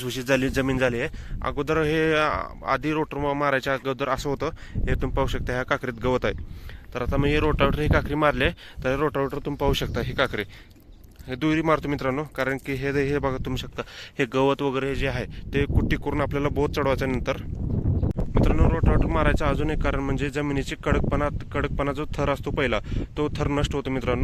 झाली जमीन झाली आहे. अगोदर हे आधी रोटर मारायच्या अगोदर असं होतं. हे तुम्ही पाहू शकता, ह्या काकरीत गवत आहे. तर आता मी हे रोटावेटर ही काकरी मारले, तर रोटावेटर तुम्ही पाहू शकता, ही काकरी हे दुरी मारतो मित्रांनो. कारण की हे बघा, तुम्ही शकता हे गवत वगैरे जे आहे ते कुट्टी करून आपल्याला बोध चढवायच्या नंतर मित्रांनो रोटावेटर मारायचं अजून एक कारण म्हणजे जमिनीची कडकपणा जो थर असतो पहिला, तो थर नष्ट होतो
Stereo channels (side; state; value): both; identical; correlation 1.00